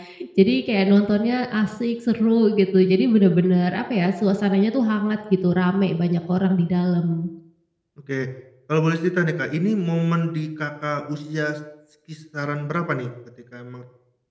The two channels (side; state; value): both; identical; correlation 1.00